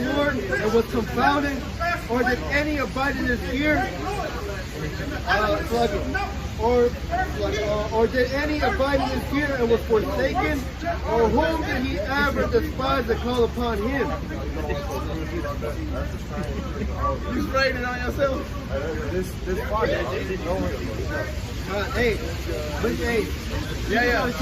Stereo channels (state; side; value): identical; both; correlation 1.00